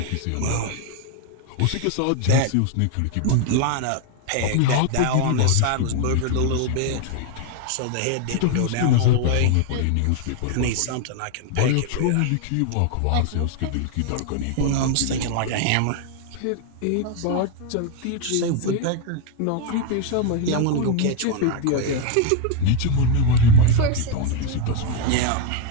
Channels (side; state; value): both; different; correlation 0.01